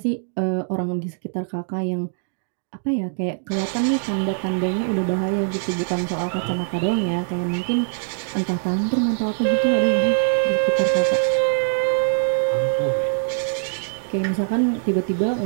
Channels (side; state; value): left; silent; digital silence